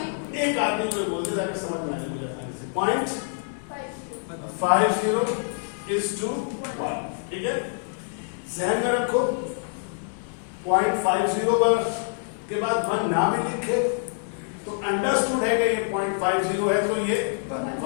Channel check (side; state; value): right; silent; digital silence